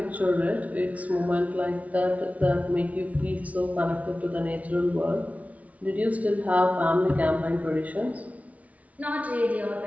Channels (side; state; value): left; late; 0.068 ms